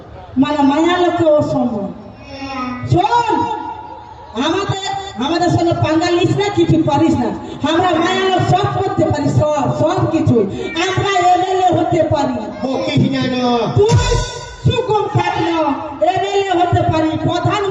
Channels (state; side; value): identical; both; correlation 1.00